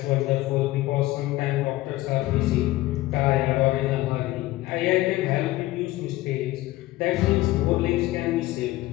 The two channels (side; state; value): right; quieter; 17.5 dB